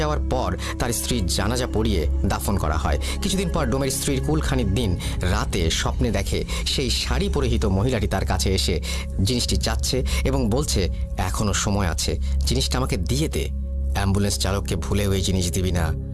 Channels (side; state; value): both; identical; correlation 1.00